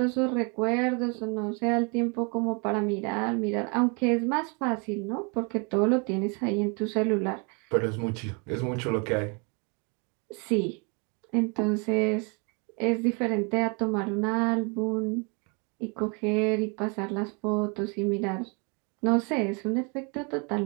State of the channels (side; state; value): left; quieter; 34.0 dB